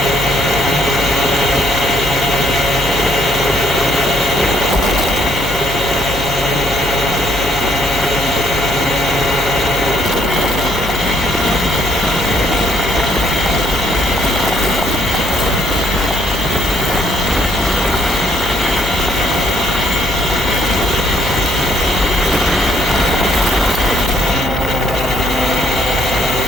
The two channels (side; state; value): left; noise; hum, 9 dB below the sound